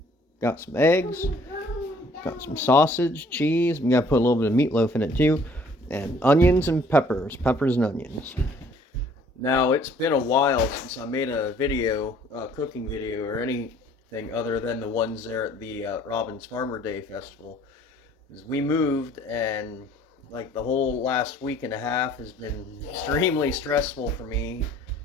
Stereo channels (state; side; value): normal; both; correlation 0.57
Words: got some eggs, got some sausage, cheese. I'm gonna put a little bit of meatloaf in it too, and onions and peppers, and onions. Now it's been a while since I made a video, cooking video, or anything other than the ones there at the Robbins Farmer Day Festival. We moved, and like the whole last week and a half has been extremely stressful for me,